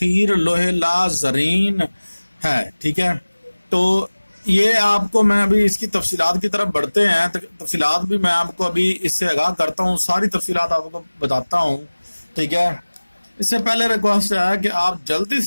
لوح لا زرین ہے، ٹھیک ہے۔ تو یہ آپ کو میں ابھی اس کی تفصیلات کی طرف بڑھتے ہیں، تفصیلات بھی میں آپ کو ابھی اس سے آگاہ کرتا ہوں، ساری تفصیلات آپ کو بتاتا ہوں، ٹھیک ہے۔ اس سے پہلے ریکویسٹ ہے کہ آپ جلدی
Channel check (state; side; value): inverted; both; correlation -1.00